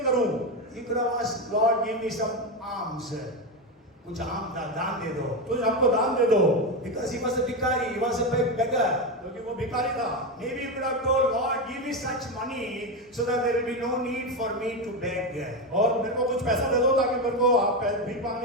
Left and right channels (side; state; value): both; normal; correlation 0.13